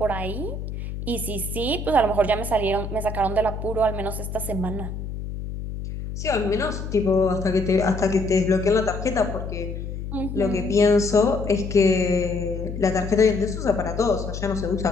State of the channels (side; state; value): left; noise; hum, 7 dB below the sound